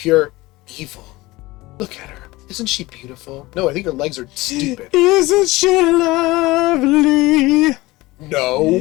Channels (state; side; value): quieter; right; 20.3 dB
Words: evil. Look at her. Isn't she beautiful? No, I think her legs are stupid. Isn't she lovely?